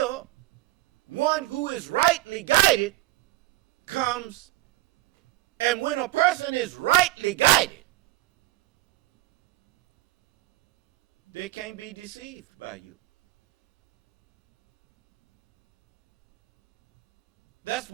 one who is rightly guided comes. And when a person is rightly guided, they can't be deceived by you. That's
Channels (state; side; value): quieter; left; 18.4 dB